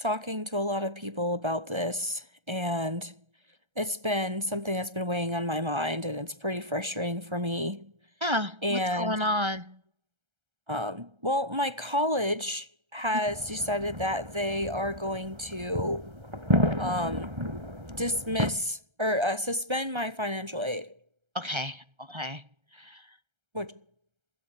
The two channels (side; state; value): left; late; 1.3 ms